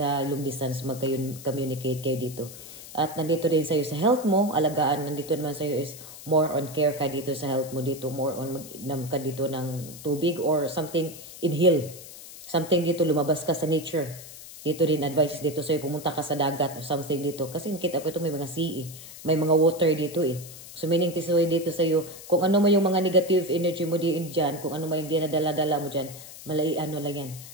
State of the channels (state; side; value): noise; left; hiss, 15 dB below the sound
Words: long distance, mag-communicate kayo dito. At nandito din sa iyo sa health mo, alagaan, nandito naman sa iyo is more on care ka dito sa health mo dito, more on mag ka dito ng tubig or something, inhale. Something dito, lumabas ka sa nature. Dito din advice dito sa'yo, pumunta ka sa dagat or something dito. Kasi nakita ko ito may mga sea may mga water dito eh. So meaning tisoy dito sa'yo, kung ano mo yung mga negative energy mo dyan, kung ano mo yung dinadala-dala mo dyan, ano lang yan.